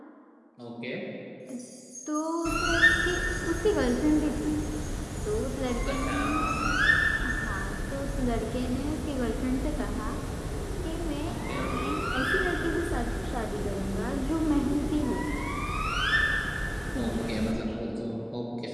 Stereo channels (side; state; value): both; identical; correlation 1.00